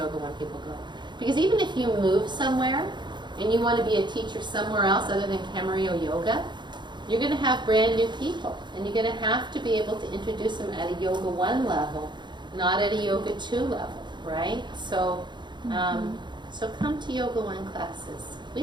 One people go. Because even if you move somewhere and you want to be a teacher somewhere else other than Camarillo Yoga, you're going to have brand new people, and you're going to have to be able to introduce them at a Yoga One level, not at a Yoga Two level, right? So, so come to Yoga One classes.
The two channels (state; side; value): late; left; 0.22 ms